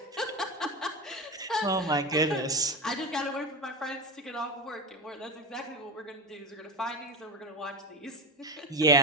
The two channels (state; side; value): normal; both; correlation 0.22